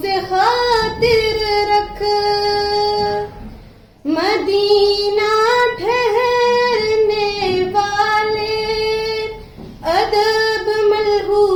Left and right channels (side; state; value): both; identical; correlation 1.00